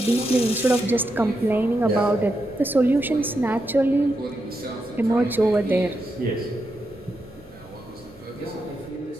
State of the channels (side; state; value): both; normal; correlation 0.85